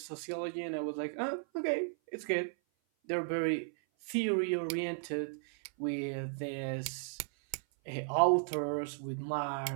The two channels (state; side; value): silent; left; 54 dB below the other